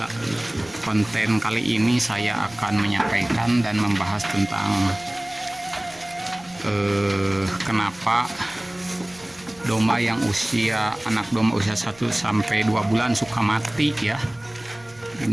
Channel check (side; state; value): right; noise; rumble, 27 dB below the sound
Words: Konten kali ini saya akan menyampaikan dan membahas tentang kenapa domba yang anak domba usia 1 sampai 2 bulan suka mati ya.